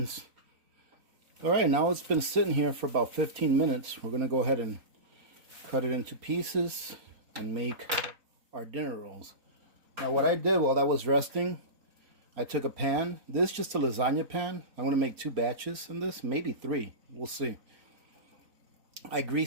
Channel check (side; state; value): left; late; 4.3 ms